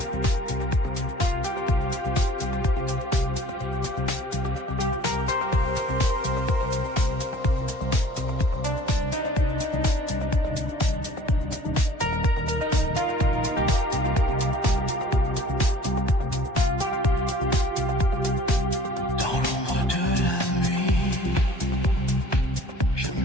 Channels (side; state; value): right; late; 1.3 ms